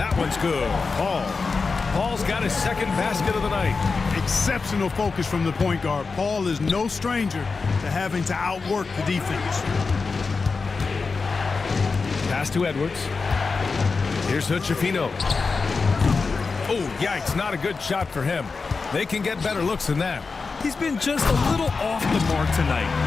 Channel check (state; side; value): quieter; right; 4.5 dB